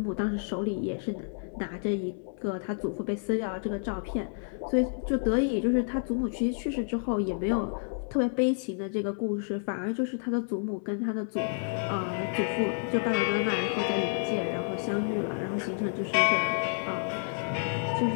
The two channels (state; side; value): silent; right; digital silence